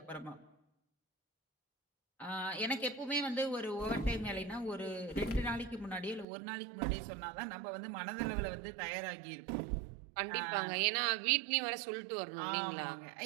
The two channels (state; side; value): drops out; left; at 6.2 s